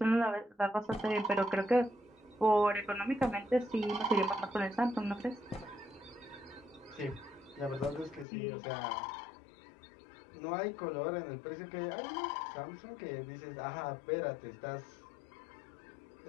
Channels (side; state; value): right; drops out; at 8.2 s